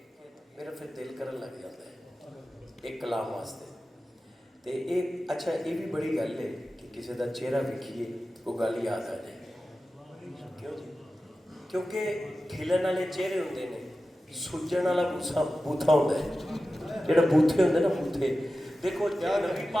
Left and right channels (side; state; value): both; normal; correlation 0.94